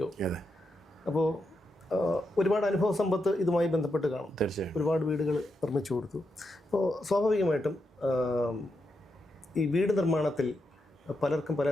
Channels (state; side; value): normal; both; correlation 0.84